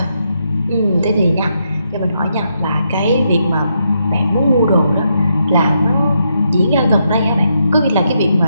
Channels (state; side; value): inverted; both; correlation -0.80